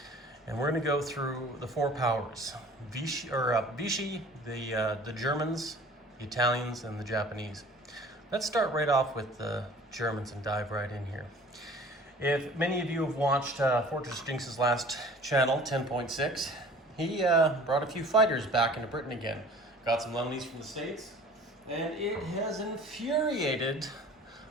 And we're going to go through the four powers, Vichy, the Germans, the Italians, and the Japanese. Let's start right off with the Germans and dive right in here. If many of you have watched Fortress Jinx's last channel, 10.6, he brought a few fighters back into Britain again. Got some loanies from the States, and it has infuriated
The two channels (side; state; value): both; normal; correlation 0.47